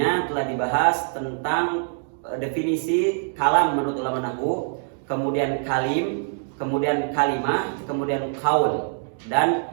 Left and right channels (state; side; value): silent; left; digital silence